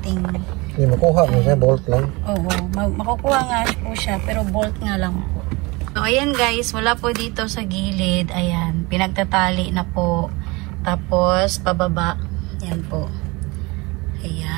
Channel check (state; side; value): quieter; left; 24.8 dB